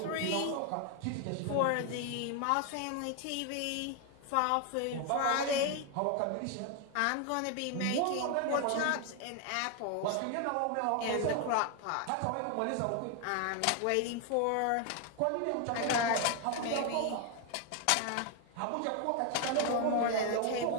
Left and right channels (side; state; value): both; different; correlation 0.01